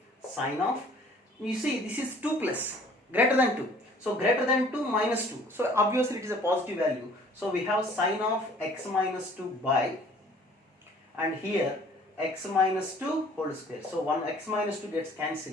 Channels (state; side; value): normal; both; correlation 0.54